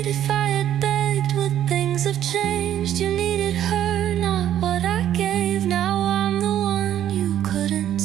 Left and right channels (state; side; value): quieter; left; 11.2 dB